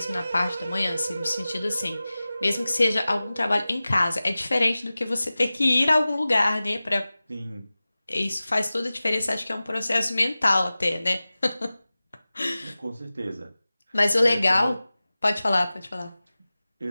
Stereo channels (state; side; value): inverted; both; correlation -0.97